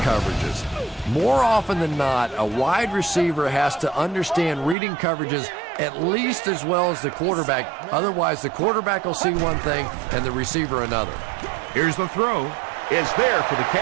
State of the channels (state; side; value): drops out; left; at 4.8 s